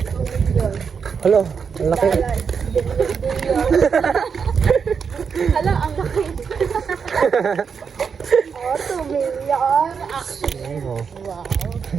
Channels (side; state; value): left; quieter; 6.2 dB